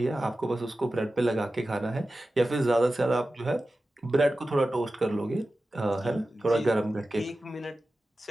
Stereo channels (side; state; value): both; normal; correlation 0.94